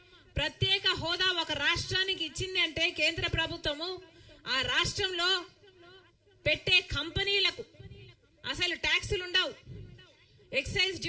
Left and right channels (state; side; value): identical; both; correlation 1.00